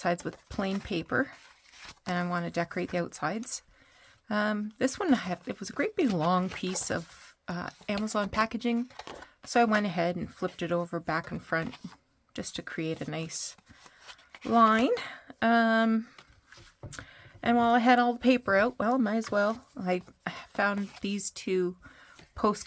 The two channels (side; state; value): both; identical; correlation 1.00